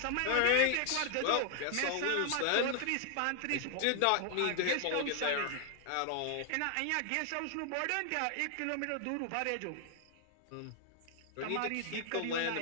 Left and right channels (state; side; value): different; both; correlation 0.00